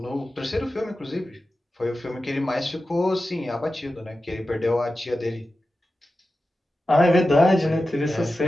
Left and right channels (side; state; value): both; normal; correlation 0.93